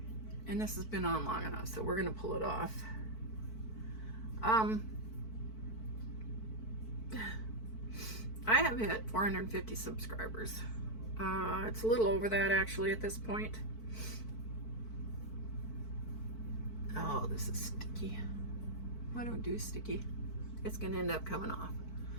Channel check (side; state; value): right; late; 4.5 ms